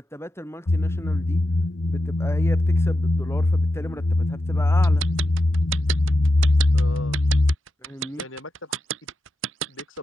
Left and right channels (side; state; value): both; normal; correlation 0.89